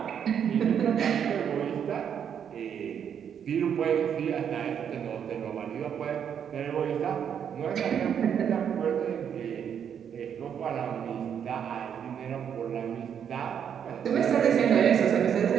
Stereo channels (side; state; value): left; quieter; 8.3 dB